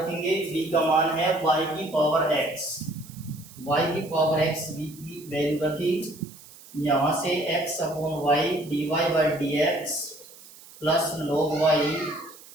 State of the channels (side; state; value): right; noise; hiss, 20 dB below the sound